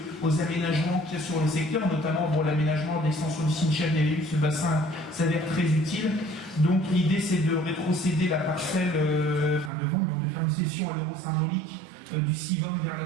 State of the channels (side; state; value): left; drops out; at 9.7 s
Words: aux aménagements qu'il y a sur le secteur, notamment pour l'aménagement de l'extension du Cimetière des ce bassin s'avère très utile. Donc l'idée, c'est de rétrocéder la parcelle, de vendre, de faire une cession à l'euro symbolique du Civom vers la